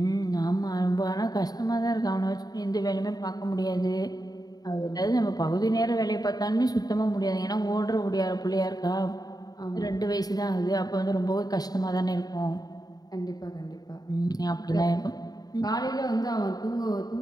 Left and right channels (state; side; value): late; right; 0.19 ms